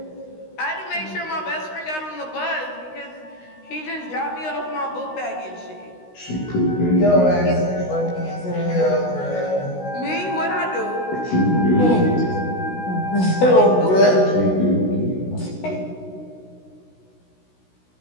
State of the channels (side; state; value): right; late; 16 ms